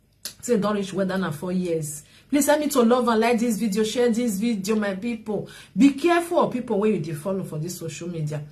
Say don't reach whether na 4 years. Please help me to love and like this video, share this video, my people. Be careful of people where you dey follow for this social media.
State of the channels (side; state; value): both; identical; correlation 1.00